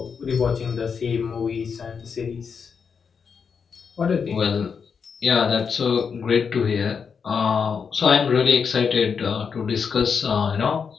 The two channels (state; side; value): quieter; right; 6.2 dB